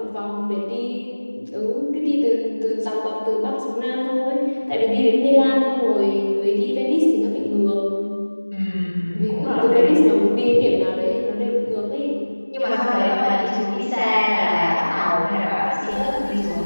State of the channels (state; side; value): inverted; both; correlation -1.00